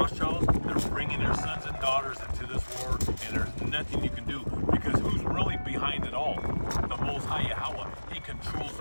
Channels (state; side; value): inverted; both; correlation -1.00